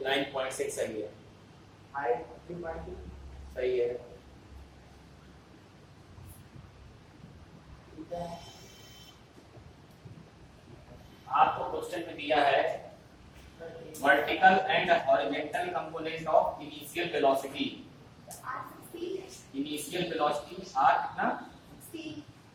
9.6 सही है। हाइट 3.2, सही है। ठीक है। आपको क्वेश्चन में दिया है vertical and horizontal component of initial velocity. r 16 है। इनिशियल वेलोसिटी आर कितना? 16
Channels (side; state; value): both; identical; correlation 1.00